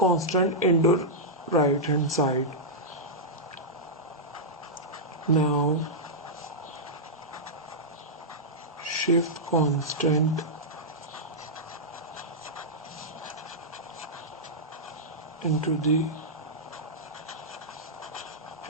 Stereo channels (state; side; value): normal; both; correlation -0.10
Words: into right hand side. Now shift constant into the